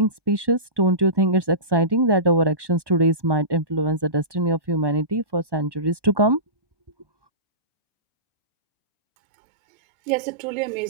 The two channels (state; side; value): late; left; 1.2 ms